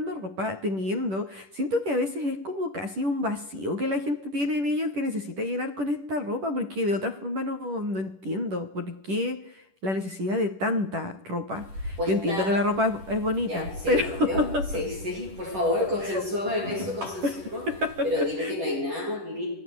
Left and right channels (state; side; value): late; left; 10 ms